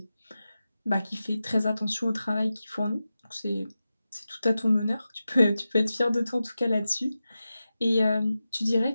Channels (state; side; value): inverted; both; correlation -0.93